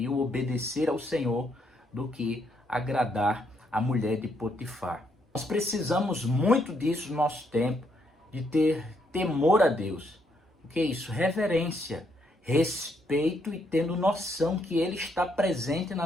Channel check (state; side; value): normal; both; correlation 0.74